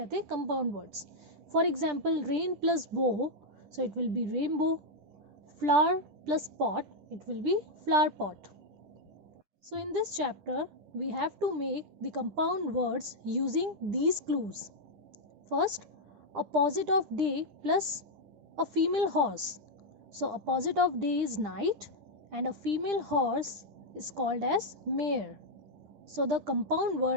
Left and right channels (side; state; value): left; late; 10 ms